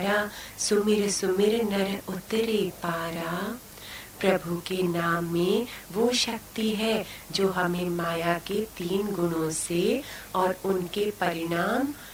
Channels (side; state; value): both; identical; correlation 1.00